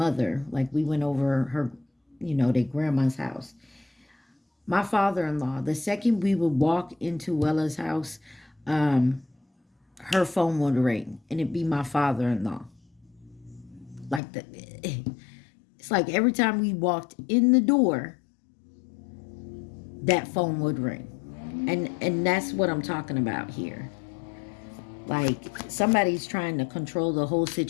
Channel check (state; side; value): drops out; right; at 14.2 s